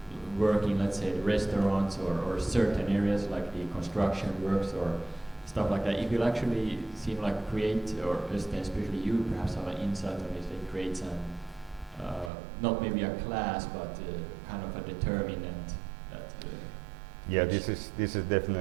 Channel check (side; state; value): left; drops out; at 12.3 s